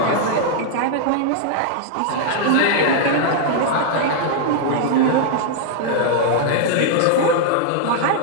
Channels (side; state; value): both; different; correlation -0.01